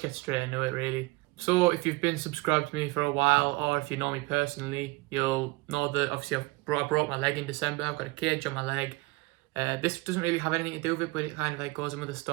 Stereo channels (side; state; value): left; quieter; 23.1 dB